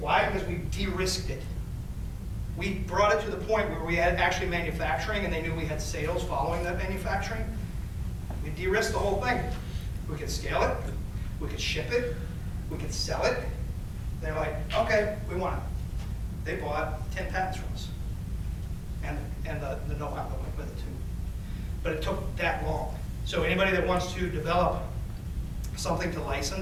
Because we de-risked it. We brought it to the point where we had actually manufacturing and they knew we had sales following that manufacturing. We de-risked the whole thing. We could scale it, we could ship it, we could sell it. They're like, okay, we want it. They bought 10 patents from us. And the know-how that went with it too. But it took that long. So anybody that wants to develop something to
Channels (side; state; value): both; identical; correlation 1.00